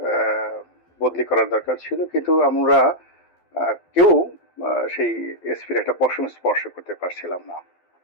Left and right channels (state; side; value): late; right; 12 ms